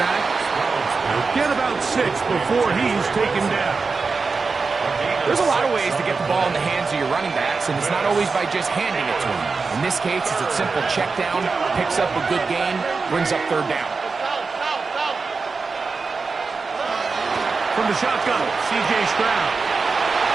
He'll get about 6 before he's taken down. There's a lot of ways to get the ball in the hands of your running backs, and it's not always by just handing it to them. In this case, it's a simple check down, picks up a good gain, brings up 3rd down. From the shotgun, C.J. Stroud.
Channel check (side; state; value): left; quieter; 4.5 dB